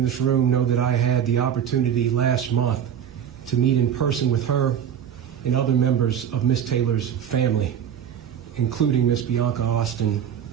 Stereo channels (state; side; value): quieter; left; 9.0 dB